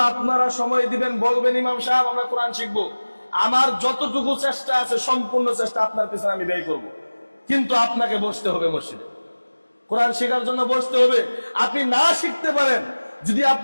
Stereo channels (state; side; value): inverted; both; correlation -1.00